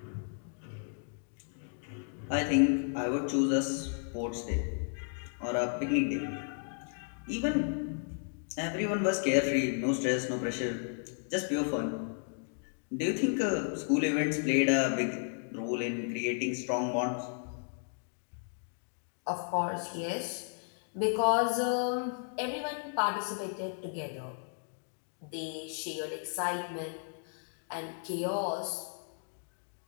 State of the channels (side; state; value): right; silent; 55 dB below the other